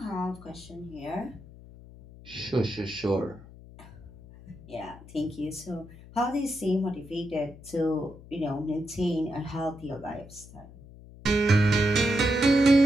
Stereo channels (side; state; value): left; noise; hum, 19 dB below the sound